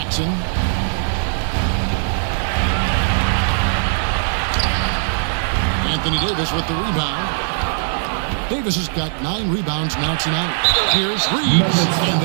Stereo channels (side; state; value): left; silent; digital silence